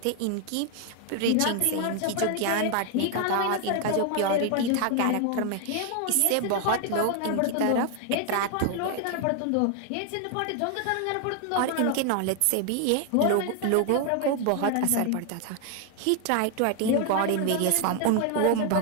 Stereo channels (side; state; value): both; different; correlation 0.00